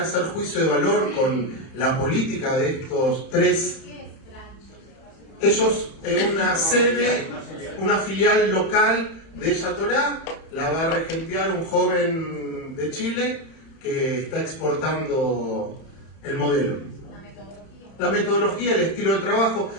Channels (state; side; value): late; right; 31 ms